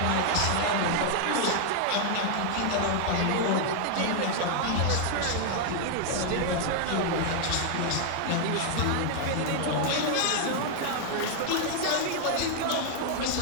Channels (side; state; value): both; different; correlation 0.00